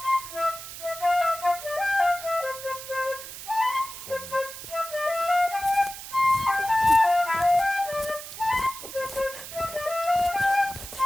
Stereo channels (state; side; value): noise; right; hiss, 11 dB below the sound